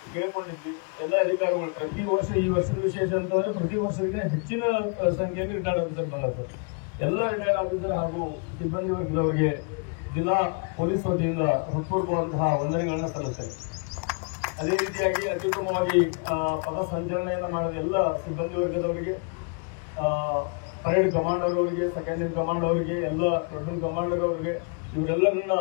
ಕೇಳಿಕೊಂಡಿದ್ವಿ. ಎಲ್ಲ ಅಧಿಕಾರಿಗಳು ಪ್ರತಿ ವರ್ಷ, ಈ ವರ್ಷದ ವಿಶೇಷ ಅಂತಂದ್ರೆ ಪ್ರತಿ ವರ್ಷಕ್ಕೆ ಹೆಚ್ಚಿನ ಸಂಖ್ಯೆಯಲ್ಲಿ ರಿಟೈರ್ಡ್ ಆಫೀಸರ್ ಬಂದಿರ್ತಾರೆ. ಎಲ್ಲ ರಿಟೈರ್ಡ್ ಆಫೀಸರ್ ಹಾಗೂ ಸಿಬ್ಬಂದಿ ವರ್ಗದವರಿಗೆ ಜಿಲ್ಲಾ ಪೊಲೀಸ್ ವತಿಯಿಂದ ಹೃತ್ಪೂರ್ವಕವಾದಂತಹ ವಂದನೆಗಳನ್ನು ಸಲ್ಲಿಸುತ್ತಾರೆ. ಅದೇ ರೀತಿಯಾಗಿ ಅತ್ಯುತ್ತಮವಾಗಿ ಪಥ ಸಂಚಲನೆಯನ್ನು ಮಾಡಿದ ಎಲ್ಲ ಸಿಬ್ಬಂದಿ ವರ್ಗದವರಿಗೆ, ಪರೇಡ್ ಕಮಾಂಡರ್ ಅವರಿಗೆ, ಸೆಕೆಂಡರಿ ಕಮಾಂಡ್ ಅವರಿಗೆ, ಎಲ್ಲ ದೊಡ್ಡ ಕಮಾಂಡರ್ ಅವರಿಗೆ, ಇವರೆಲ್ಲರನ್ನ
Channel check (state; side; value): quieter; right; 38.1 dB